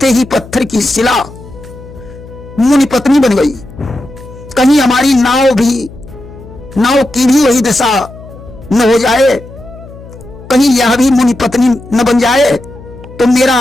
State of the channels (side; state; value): left; noise; hum, 18 dB below the sound